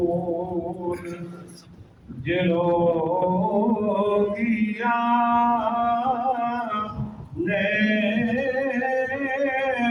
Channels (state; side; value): identical; both; correlation 1.00